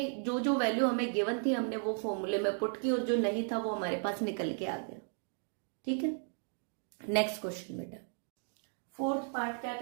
जो जो वैल्यू हमें गिवन थी हमने वो फॉर्मूले में पुट की और जो नहीं था वो हमारे पास निकल के आ गया। ठीक है, नेक्स्ट क्वेश्चन बेटा। फोर्थ पार्ट क्या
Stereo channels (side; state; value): left; silent; 54 dB below the other